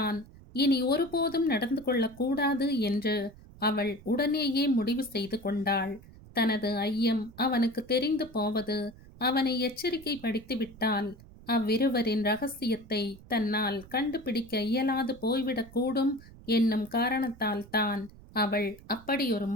இனி ஒருபோதும் நடந்து கொள்ளக்கூடாது என்று அவள் உடனேயே முடிவு செய்து கொண்டாள். தனது ஐயம் அவனுக்கு தெரிந்து போவது அவனை எச்சரிக்கை படித்துவிட்டால் அவ்விருவரின் ரகசியத்தை தன்னால் கண்டுபிடிக்க இயலாது போய்விடக்கூடும் என்னும் காரணத்தால் தான் அவள் அப்படி ஒரு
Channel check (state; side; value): noise; right; rumble, 20 dB below the sound